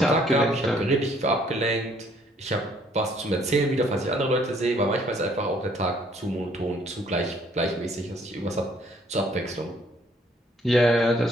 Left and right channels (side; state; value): both; normal; correlation 0.63